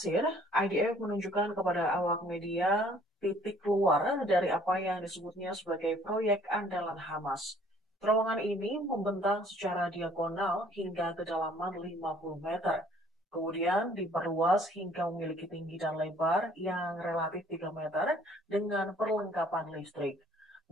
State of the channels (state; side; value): normal; both; correlation 0.58